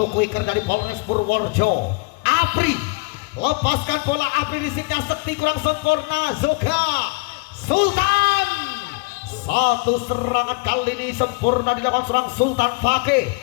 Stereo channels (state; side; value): quieter; right; 28.5 dB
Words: quicker dari Polres Purworejo. Apri lepaskan bola, Apri risipnya Sekti kurang sempurna. Zoga Sultan. Satu serangan kali ini sempurna dilakukan seorang Sultan Fakih.